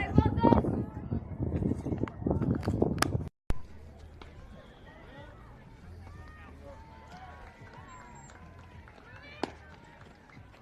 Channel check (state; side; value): identical; both; correlation 1.00